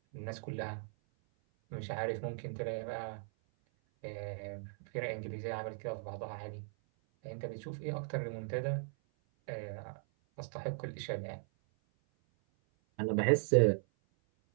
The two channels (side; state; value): left; silent; 52 dB below the other